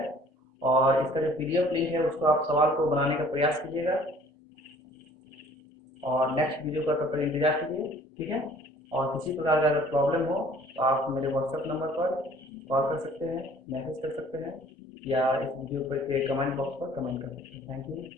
और इसका जो पीडीएफ लिंक है उसको आप सवाल को बनाने का प्रयास कीजिएगा, और नेक्स्ट वीडियो का तब तक इंतजार कीजिए, ठीक है। और किसी प्रकार का अगर प्रॉब्लम हो तो आप मेरे व्हाट्सएप नंबर पर कॉल कर सकते हैं, मैसेज कर सकते हैं, या इस वीडियो पर के कमेंट बॉक्स पर कमेंट कर सकते हैं। Thank you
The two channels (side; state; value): both; normal; correlation 0.53